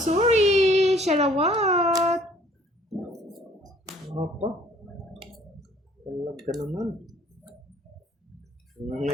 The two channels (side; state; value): both; normal; correlation 0.57